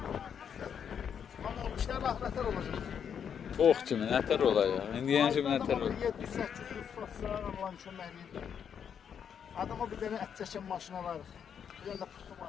Ama bu işler ahmetler olacak. Çok kimi nətər olacaq? İndi yəni kimi nətər olacaq? 700-800 satsa Allah'ın çöməkliyi. Adama bir tane et çəkən maşınalar. Bir tane de pıhtı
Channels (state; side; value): quieter; right; 7.8 dB